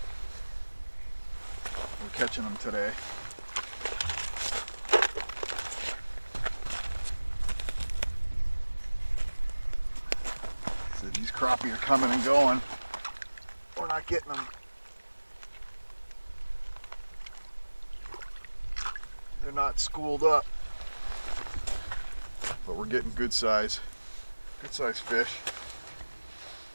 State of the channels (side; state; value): both; inverted; correlation -1.00